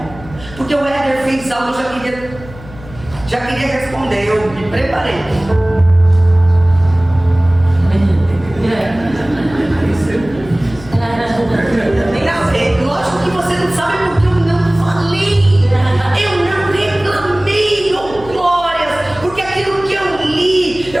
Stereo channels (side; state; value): left; noise; hum, 17 dB below the sound